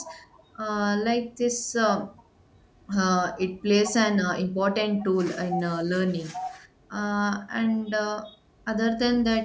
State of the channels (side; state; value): both; identical; correlation 1.00